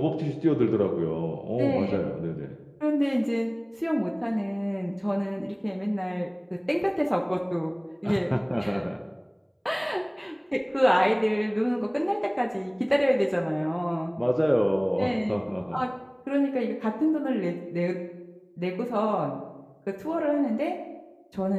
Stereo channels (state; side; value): identical; both; correlation 1.00